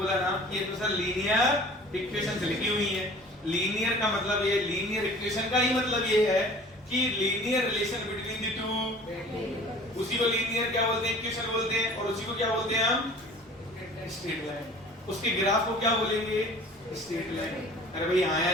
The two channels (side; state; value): both; normal; correlation 0.46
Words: ना कि ये तो सर लीनियर इक्वेशन से लिखी हुई है। लीनियर का मतलब ये, लीनियर इक्वेशन का ही मतलब ये है कि linear relation between the two, उसी को लीनियर क्या बोलते हैं? इक्वेशन बोलते हैं। और उसी को क्या बोलते हैं हम? Straight line. उसके ग्राफ को क्या बोलेंगे? Straight line. अरे भाई हाँ